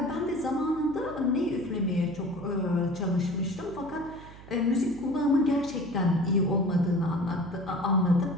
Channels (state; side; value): noise; right; hum, 18 dB below the sound